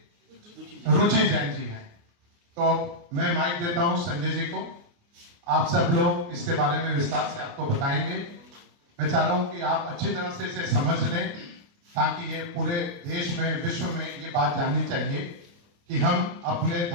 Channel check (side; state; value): left; late; 29 ms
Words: रुचि जैन जी हैं। तो मैं माइक देता हूं संजय जी को। आप सब लोग इसके बारे में विस्तार से आपको बताएंगे। मैं चाह रहा हूं कि आप अच्छी तरह से इसे समझ लें ताकि ये पूरे देश में, विश्व में ये बात जाननी चाहिए कि हम अपने